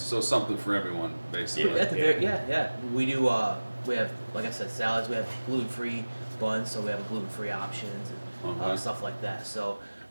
something for everyone, basically. At the very we do. We have, like I said, salads. We have gluten-free buns, so we have gluten-free options and stuff like that. So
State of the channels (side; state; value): both; inverted; correlation -1.00